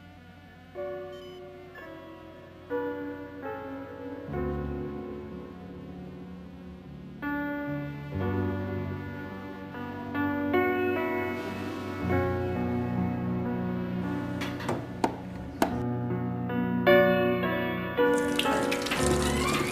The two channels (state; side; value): identical; both; correlation 1.00